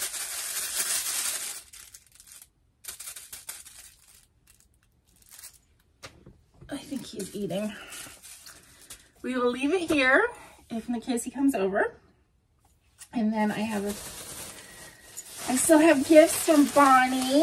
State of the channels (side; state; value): both; identical; correlation 1.00